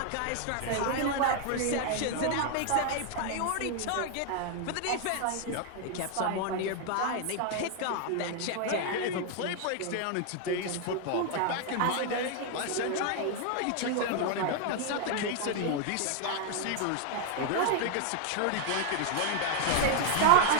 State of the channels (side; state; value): both; different; correlation 0.00